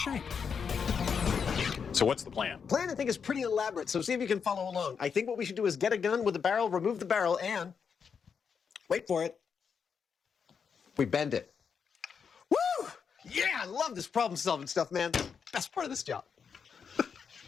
So what's the plan? Plan, I think, is pretty elaborate, so see if you can follow along. I think what we should do is get a gun with a barrel, remove the barrel, and... wait for it. We bend it. Woo! Yeah, I love this problem-solving stuff, man. Best part of this job.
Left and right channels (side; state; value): right; quieter; 6.4 dB